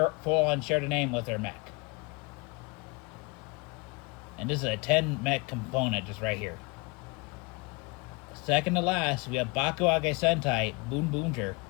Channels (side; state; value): right; quieter; 28.5 dB